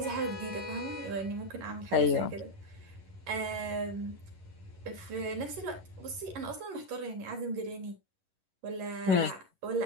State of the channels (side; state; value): left; late; 11 ms